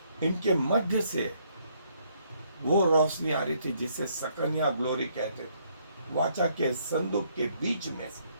इनके मध्य से वो रोशनी आ रही थी जिसे सकनिया ग्लोरी कहते थे। वाचा के संदूक के बीच में से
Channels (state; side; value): inverted; both; correlation -0.69